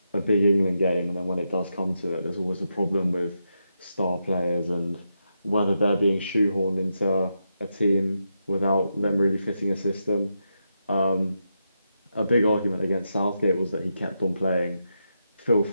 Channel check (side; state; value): both; inverted; correlation -0.85